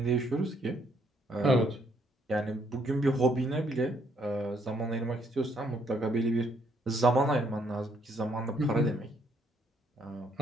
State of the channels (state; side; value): normal; both; correlation 0.69